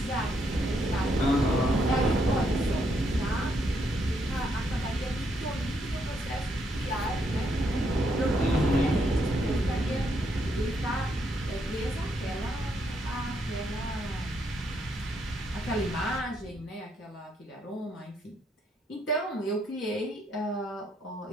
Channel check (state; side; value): normal; both; correlation 0.75